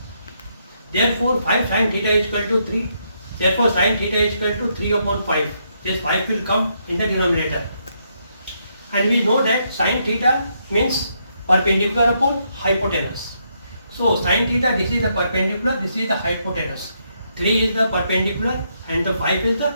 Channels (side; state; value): both; inverted; correlation -0.77